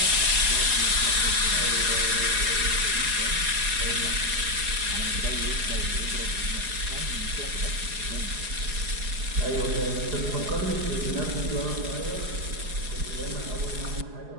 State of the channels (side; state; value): left; late; 4.8 ms